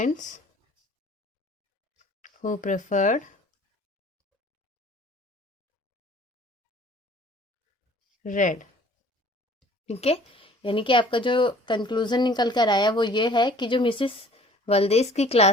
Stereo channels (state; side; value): normal; both; correlation 0.52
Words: who preferred red। ठीक है, यानी कि आपका जो कंक्लूजन निकल कर आया वो ये है कि जो मिसेस वल्देस की